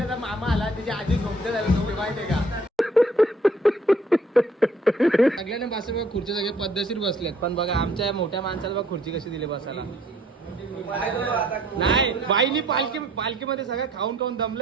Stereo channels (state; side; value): normal; both; correlation 0.61